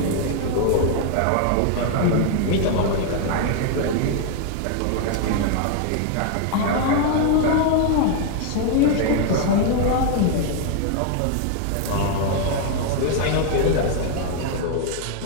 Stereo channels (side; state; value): both; different; correlation 0.00